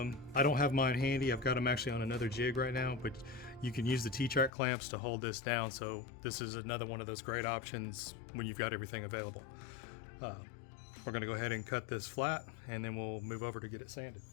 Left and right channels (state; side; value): drops out; right; at 4.5 s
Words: don't have mine handy. I've got them actually on another jig right now, but you can use the T-track clamps to hold this down. So this is another one of those great options when you've got everything available. We're going to go ahead and cut this flat, and then we'll move over to get it sanded.